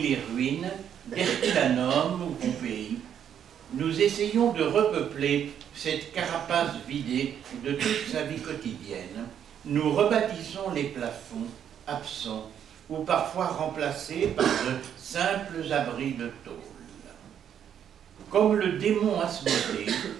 ruines d'Herculanum ou Pompéi, nous essayons de repeupler cette carapace vidée de toute sa vie quotidienne. Nous rebâtissons les plafonds absents ou parfois remplacés par de simples abris de tôle. Comme le démon Asmodée,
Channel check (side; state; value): left; quieter; 9.1 dB